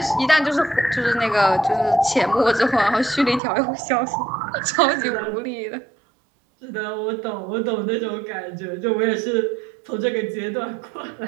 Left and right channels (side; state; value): left; drops out; at 3.4 s